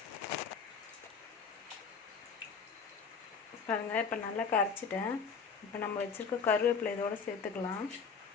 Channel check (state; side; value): quieter; right; 5.7 dB